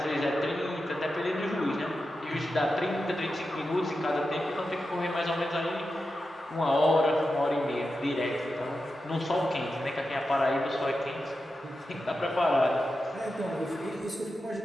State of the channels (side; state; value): both; normal; correlation 0.90